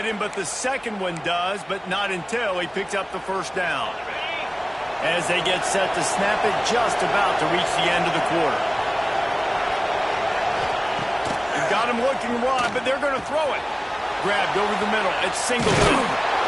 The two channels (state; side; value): identical; both; correlation 1.00